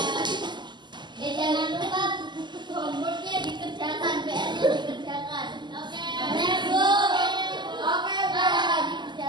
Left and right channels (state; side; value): late; left; 0.21 ms